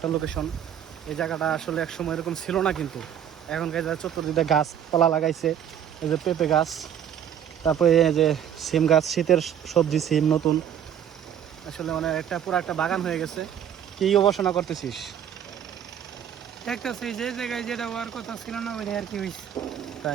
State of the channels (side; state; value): left; quieter; 9.5 dB